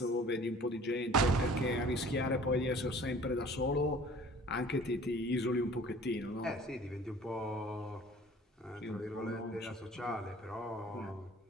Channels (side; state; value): both; normal; correlation 0.48